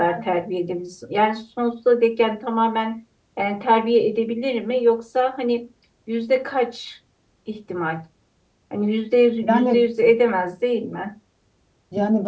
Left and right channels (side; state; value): both; identical; correlation 1.00